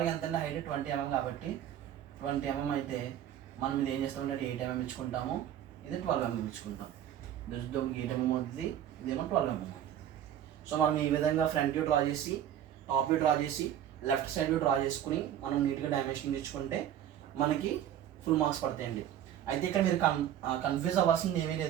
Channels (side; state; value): left; quieter; 10.7 dB